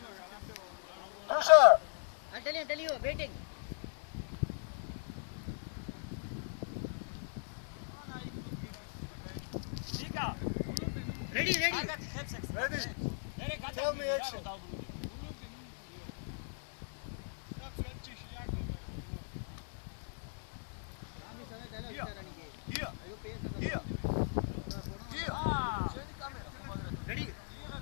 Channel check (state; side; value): silent; right; digital silence